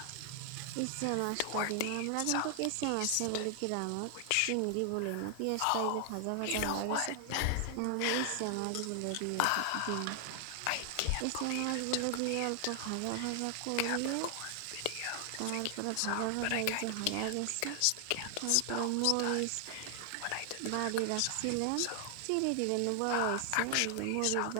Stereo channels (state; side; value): different; both; correlation 0.00